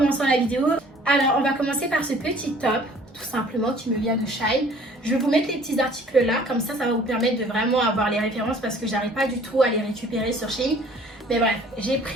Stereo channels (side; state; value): both; normal; correlation 0.53